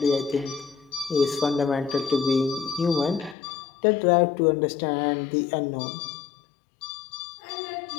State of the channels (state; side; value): drops out; right; at 3.4 s